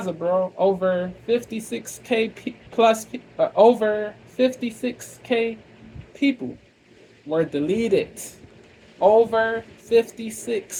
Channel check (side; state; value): both; identical; correlation 1.00